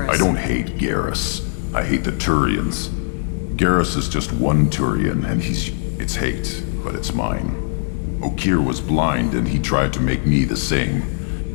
I don't hate Garrus. I hate the Turians. Garrus is just one Turian, and it's hate, but it's mine. Okir was blind, and he tried to make me the same.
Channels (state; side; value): silent; right; digital silence